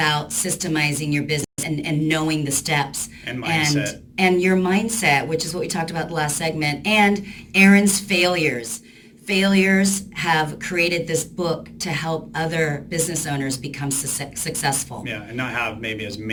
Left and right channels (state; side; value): identical; both; correlation 1.00